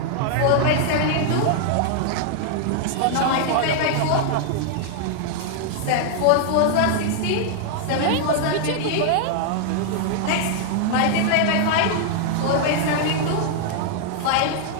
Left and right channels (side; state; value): both; different; correlation -0.01